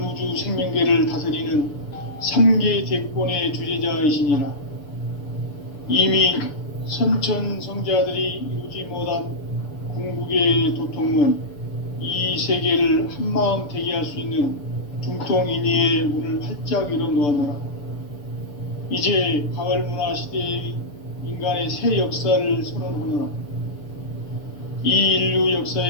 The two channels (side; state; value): right; late; 6.9 ms